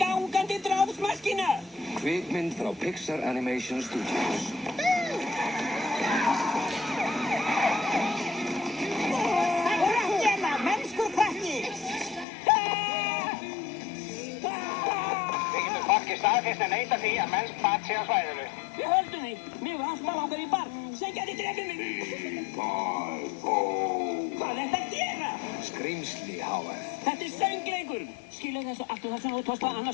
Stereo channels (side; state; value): right; drops out; at 12.2 s